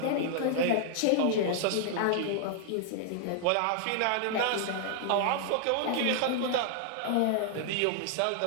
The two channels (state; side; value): different; both; correlation -0.01